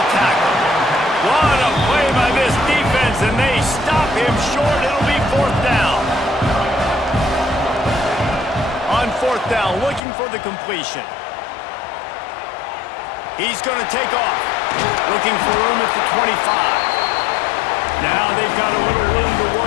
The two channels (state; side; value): drops out; right; at 10.0 s